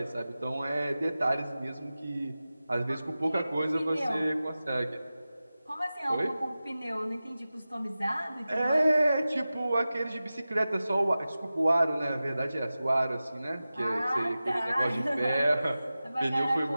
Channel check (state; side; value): inverted; both; correlation -0.95